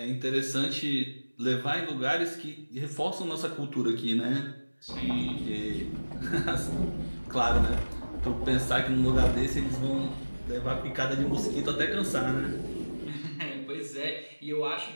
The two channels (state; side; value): inverted; both; correlation -1.00